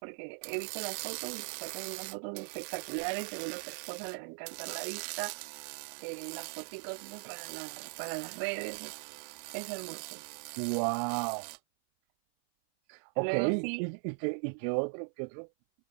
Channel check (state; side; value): silent; left; 52 dB below the other